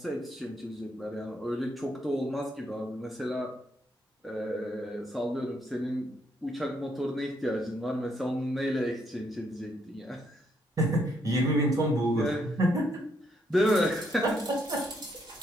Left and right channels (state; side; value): normal; both; correlation 0.74